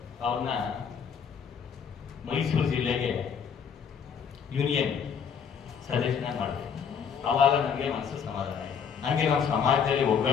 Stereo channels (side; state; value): right; quieter; 7.1 dB